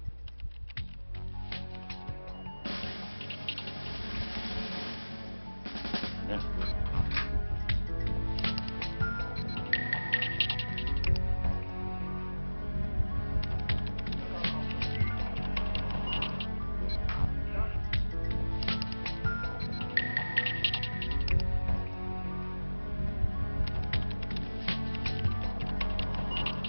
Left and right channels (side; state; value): both; inverted; correlation -1.00